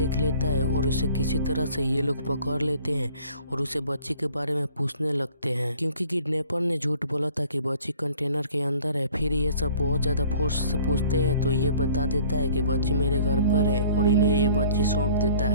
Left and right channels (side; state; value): both; inverted; correlation -0.53